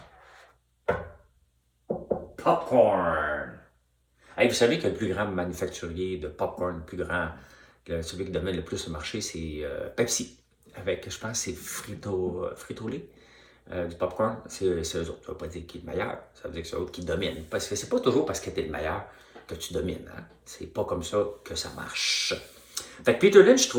Popcorn. Hey, vous savez que le plus grand manufacturier de popcorn, celui qui domine le plus le marché, c'est Pepsi. Avec, je pense, c'est Frito-Lay. Du popcorn, c'est eux autres. Ça ne veut pas dire qui est le meilleur, ça veut dire que c'est eux autres qui dominent. Parce que c'est pas toujours parce que tu es le meilleur que tu domines. Hein? C'est pas comme ça que ça marche. Fait que Peter Lynch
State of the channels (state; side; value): identical; both; correlation 1.00